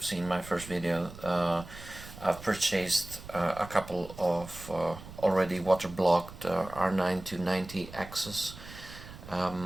seen my first video, I've purchased a couple of already water-blocked R9-290 Asus.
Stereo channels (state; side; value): noise; right; rumble, 15 dB below the sound